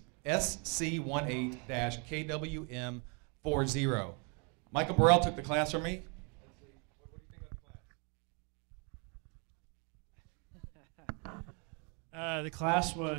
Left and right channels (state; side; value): quieter; left; 34.9 dB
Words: SC18-KWM40. Michael Burrell took the class from me. The class